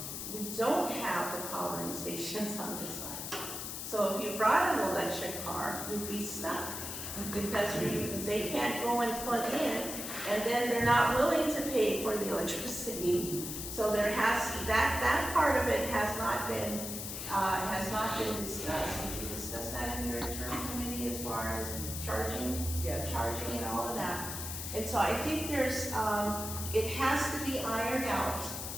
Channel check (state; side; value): noise; left; hiss, 6 dB below the sound